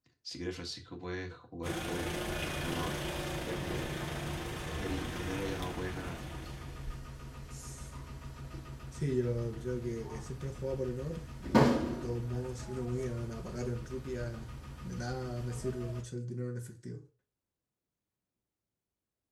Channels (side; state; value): both; identical; correlation 1.00